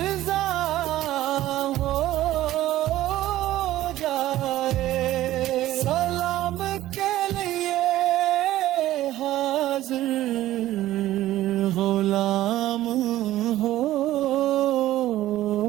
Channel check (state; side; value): quieter; left; 14.7 dB